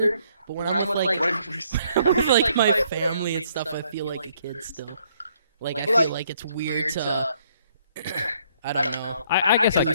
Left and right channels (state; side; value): inverted; both; correlation -0.67